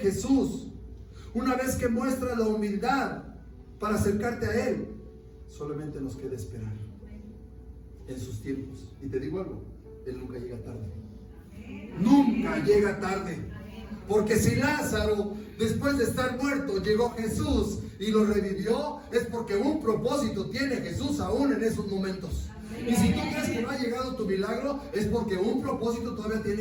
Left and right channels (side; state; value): both; identical; correlation 1.00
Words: una vez que muestras la humildad para acercarte a Él, solamente nos queda esperar en sus tiempos. Y te digo algo: Él nunca llega tarde. Nunca llega tarde. Porque si Lázaro, después de estar muerto, llegó Jesús y lo revivió, es porque un propósito tiene Jesús aún en esos momentos. Y si tú crees que no ha llegado tu milagro, es porque un propósito todavía